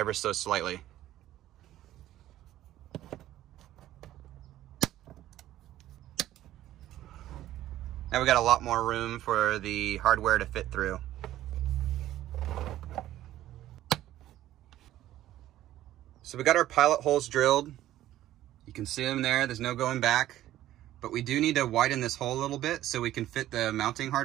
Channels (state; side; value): quieter; left; 13.7 dB